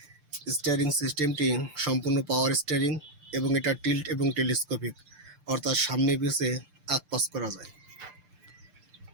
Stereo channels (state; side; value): late; left; 6.7 ms